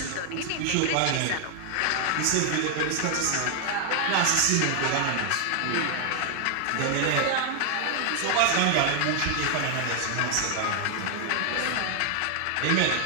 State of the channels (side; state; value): both; different; correlation 0.00